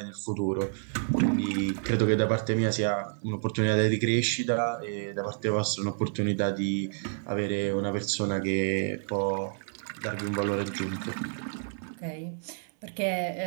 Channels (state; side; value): silent; left; 58 dB below the other